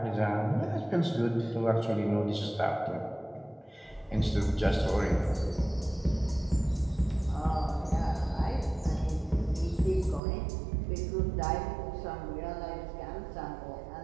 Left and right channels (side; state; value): left; drops out; at 10.2 s